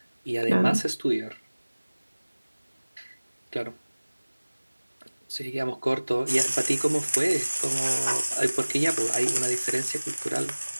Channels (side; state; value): both; inverted; correlation -1.00